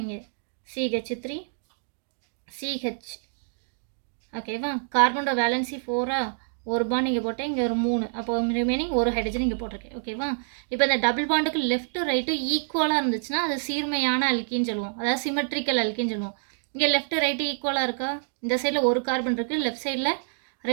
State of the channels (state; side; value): silent; left; digital silence